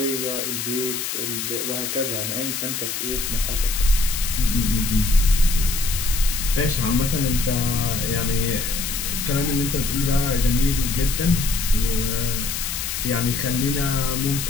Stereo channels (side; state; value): left; noise; hiss, 3 dB below the sound